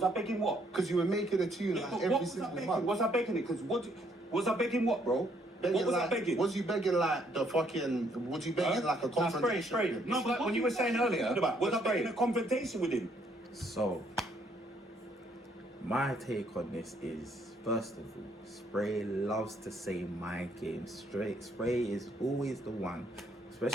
I begging what? Because you were making a tune like What every was I single begging? month. Was I begging it? Because what? Was I begging what, bro? Begging What was I like, begging? Was you begging like the fucking, was you begging like a confrontation? Spray. No, but when you were saying earlier, Was I begging a confrontation with him? So, my take on this is, first of all, Spay loves to say mind games. Spay is always the one,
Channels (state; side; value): normal; both; correlation 0.69